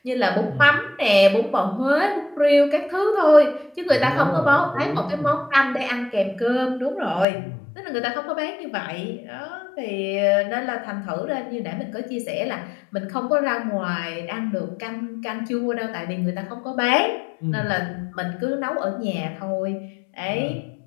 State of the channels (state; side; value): drops out; right; at 7.2 s